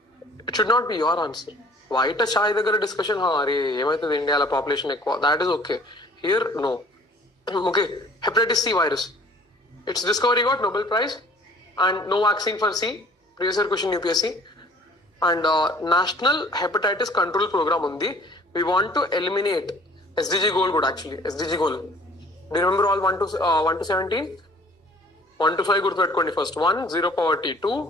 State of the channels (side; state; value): both; normal; correlation 0.53